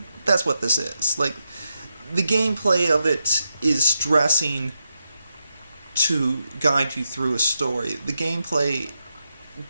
that's what this is. Like, the gameplay of it is dressing to guide you through a story. The gameplay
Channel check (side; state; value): both; inverted; correlation -0.85